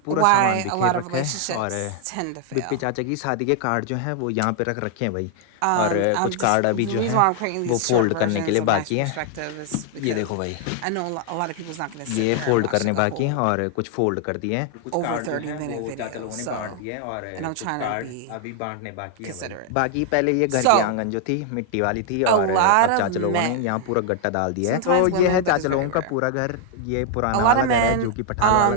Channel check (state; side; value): different; both; correlation 0.00